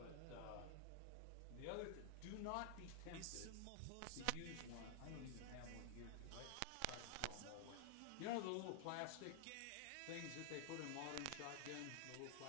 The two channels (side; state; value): both; different; correlation 0.00